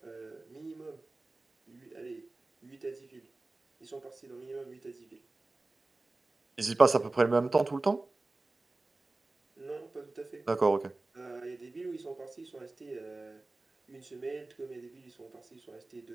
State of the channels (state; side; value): quieter; left; 3.1 dB